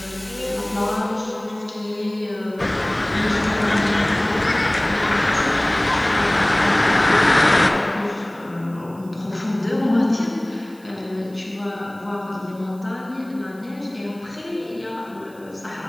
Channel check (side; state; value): right; noise; hiss, 27 dB below the sound